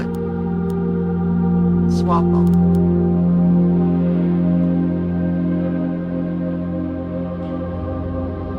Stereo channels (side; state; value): both; identical; correlation 1.00